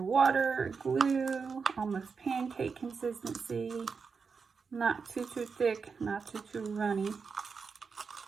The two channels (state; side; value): quieter; left; 5.3 dB